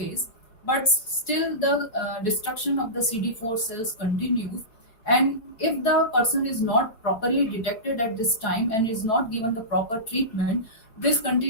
but still the destruction of the CD4 cells continues. And if the person is not properly detected at this time and is not given the proper treatment, this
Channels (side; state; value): right; late; 4.6 ms